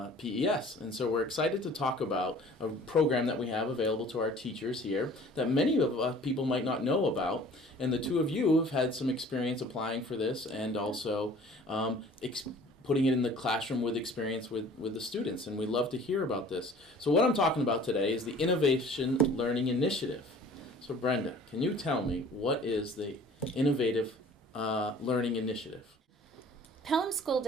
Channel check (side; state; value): both; normal; correlation 0.49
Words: PES. And so we're excited to talk about a program that we have available to our teachers here that many of us people might not know about. And the two of you have had some experience applying for this and also putting it in the classroom with experience with the students. And we love to hear about this. So what I'm talking about today is the Innovation Learning Initiative. So Brenda, can you tell me what is the Innovative Learning Initiative? Pelham School